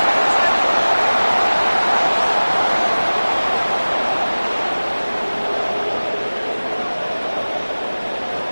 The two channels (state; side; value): inverted; both; correlation -1.00